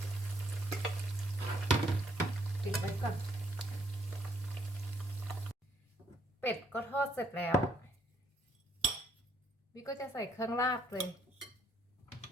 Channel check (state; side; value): normal; both; correlation 0.69